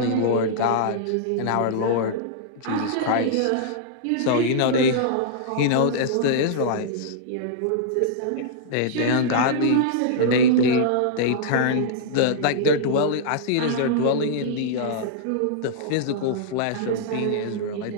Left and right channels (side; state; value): both; different; correlation -0.02